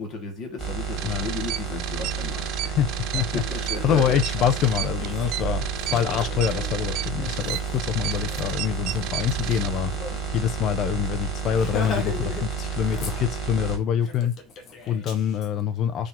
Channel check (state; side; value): quieter; right; 3.4 dB